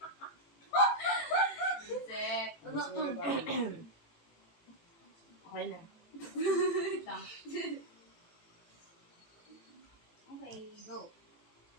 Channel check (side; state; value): right; late; 18 ms